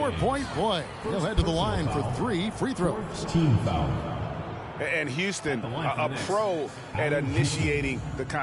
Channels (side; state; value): both; identical; correlation 1.00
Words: play. He'll head to the line for 3 free throws. Team foul. And Houston, a pro at initiating the